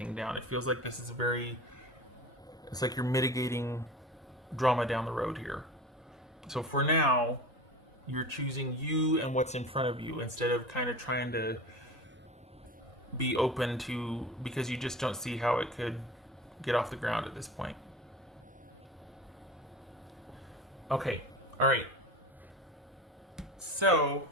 down. It feels like this is it's like you're mitigating drama down the road here. So for now, you're choosing you and what's in front of you instead of kind of trying to be open to, because you just don't see how it could get off the ground at this point. Okay, all right. So,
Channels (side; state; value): both; normal; correlation 0.34